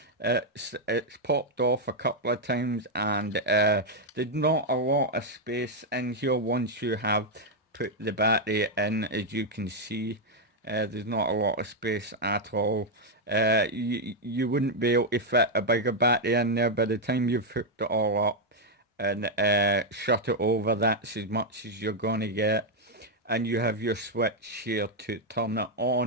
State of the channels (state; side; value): normal; both; correlation 0.00